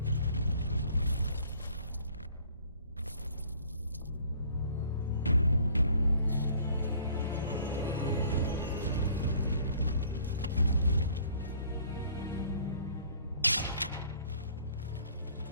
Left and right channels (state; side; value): inverted; both; correlation -0.56